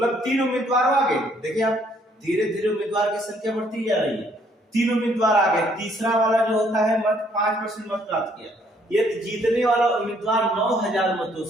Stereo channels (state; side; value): normal; both; correlation 0.66